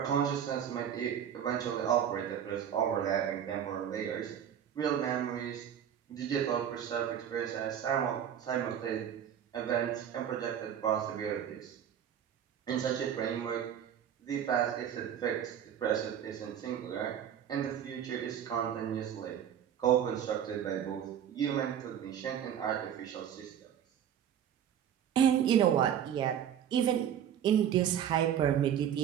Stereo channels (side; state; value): left; quieter; 9.3 dB